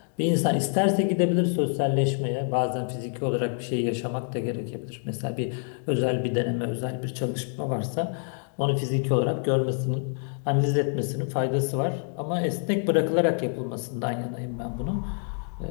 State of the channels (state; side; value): silent; right; 60 dB below the other